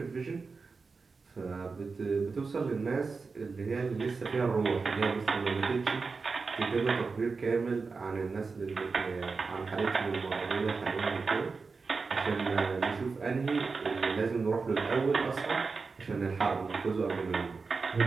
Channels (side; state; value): left; quieter; 4.5 dB